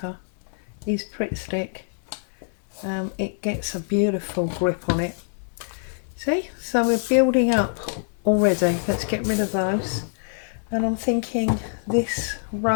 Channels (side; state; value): right; silent; 60 dB below the other